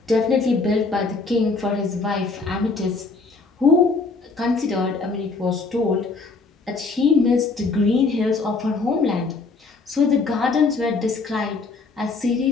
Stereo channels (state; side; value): quieter; right; 4.0 dB